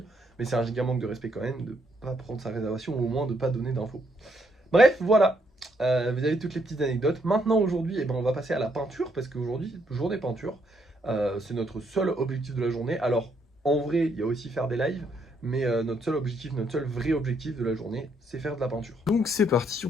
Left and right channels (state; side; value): normal; both; correlation 0.73